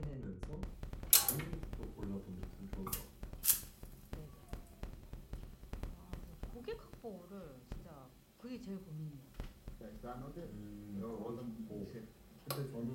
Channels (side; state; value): both; identical; correlation 1.00